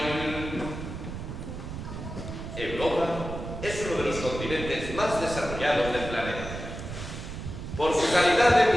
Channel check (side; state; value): right; noise; rumble, 8 dB below the sound